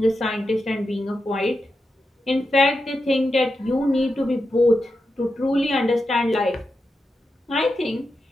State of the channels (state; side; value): normal; both; correlation 0.88